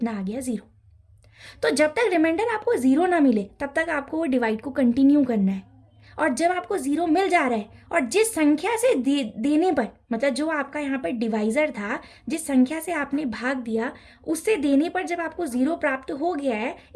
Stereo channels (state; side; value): identical; both; correlation 1.00